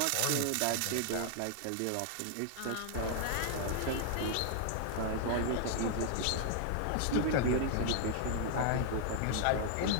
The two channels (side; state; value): both; different; correlation -0.01